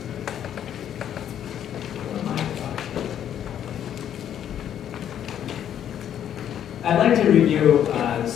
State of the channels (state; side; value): quieter; right; 10.0 dB